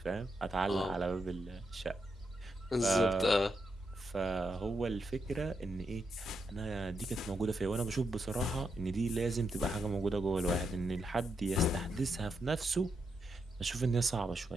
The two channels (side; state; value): both; normal; correlation 0.83